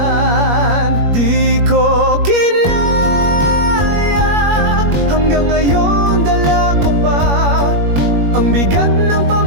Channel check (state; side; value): late; left; 21 ms